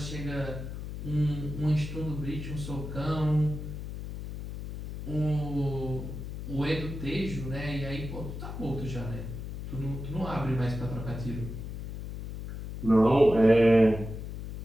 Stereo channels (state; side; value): noise; left; hum, 8 dB below the sound